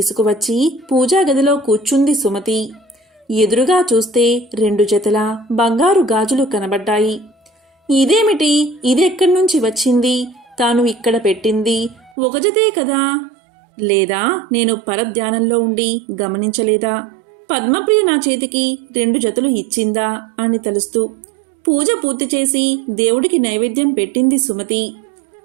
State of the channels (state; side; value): drops out; left; at 12.1 s